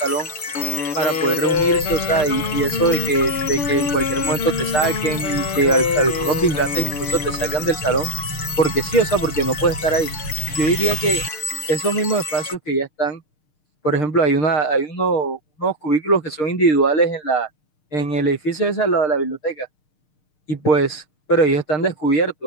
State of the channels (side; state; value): right; late; 6.6 ms